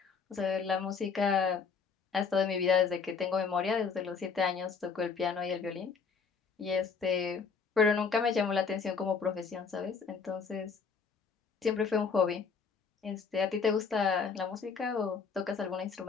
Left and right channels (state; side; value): quieter; right; 5.5 dB